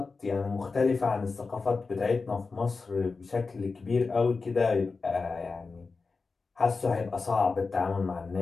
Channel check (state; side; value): quieter; right; 4.3 dB